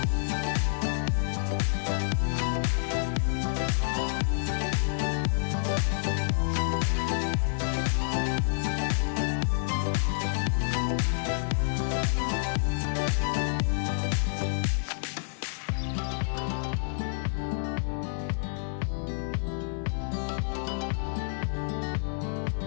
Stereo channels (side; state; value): right; silent; 59 dB below the other